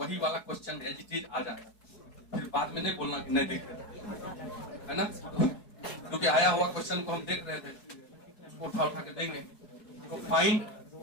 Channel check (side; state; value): right; late; 4.7 ms